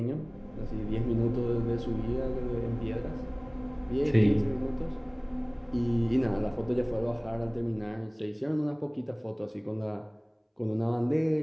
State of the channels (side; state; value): both; identical; correlation 1.00